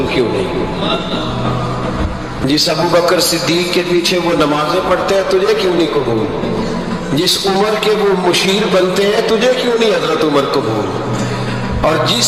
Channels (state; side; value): identical; both; correlation 1.00